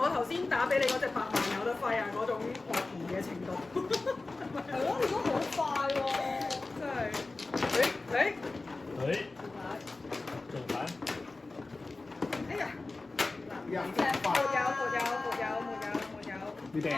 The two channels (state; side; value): quieter; right; 3.4 dB